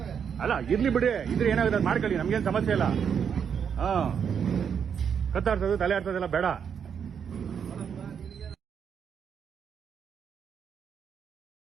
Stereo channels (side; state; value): left; quieter; 7.4 dB